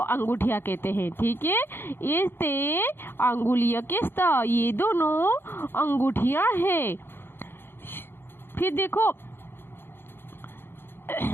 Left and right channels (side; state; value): right; late; 0.10 ms